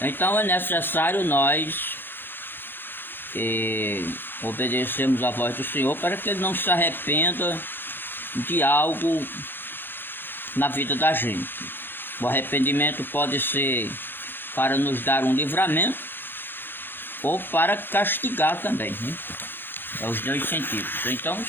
é necessário nós obedecermos a voz do Senhor para que Ele não se arrependa de algo na vida da gente. O arrependimento pode ser para nos dar um livramento ou para castigar também, né? É os dois sentidos. Então,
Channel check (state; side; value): late; right; 0.099 ms